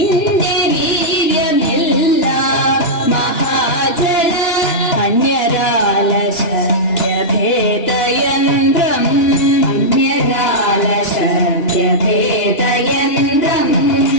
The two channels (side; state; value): right; late; 2.9 ms